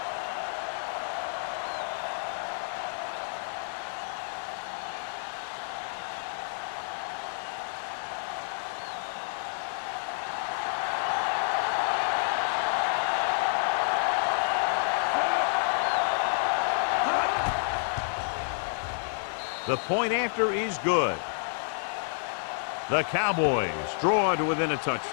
The point after is good. The Cowboys draw to within a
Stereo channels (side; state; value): right; silent; 58 dB below the other